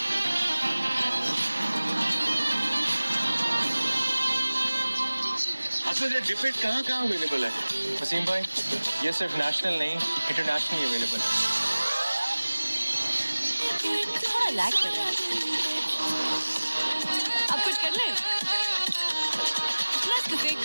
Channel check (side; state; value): both; inverted; correlation -1.00